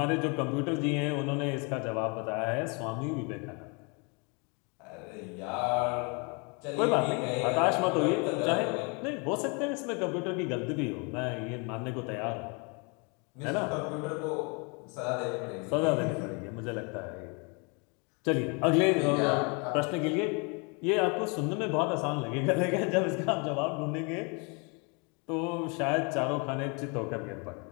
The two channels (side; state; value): right; quieter; 32.9 dB